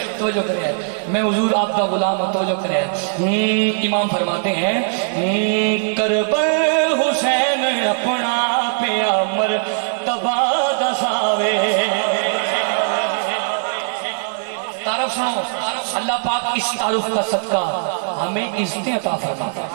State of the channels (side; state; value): left; silent; digital silence